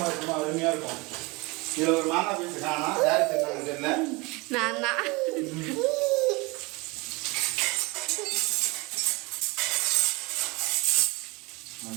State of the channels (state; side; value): quieter; left; 25.6 dB